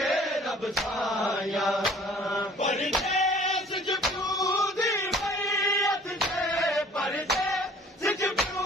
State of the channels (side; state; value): both; normal; correlation 0.52